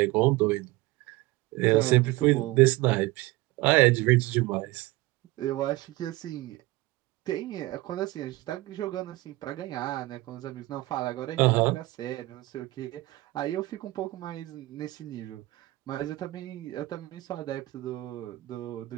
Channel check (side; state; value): left; quieter; 19.7 dB